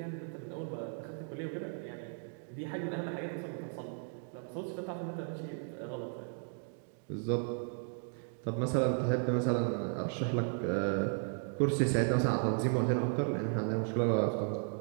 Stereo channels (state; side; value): silent; left; 54 dB below the other